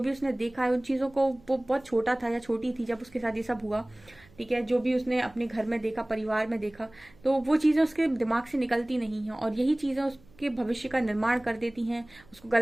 भी उसने देखा है उन चीजों को, वो बहुत छोटा था या छोटी थी जब उसके साथ ये सब हुआ, ठीक है। जो भी उसने अपने घर में देखा, परिवार में देखा, तो वो चीजें उसके दिमाग से निकलती नहीं है, और यही चीजें आपके भविष्य का निर्माण कर देती हैं, उसको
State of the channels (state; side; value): noise; right; hum, 27 dB below the sound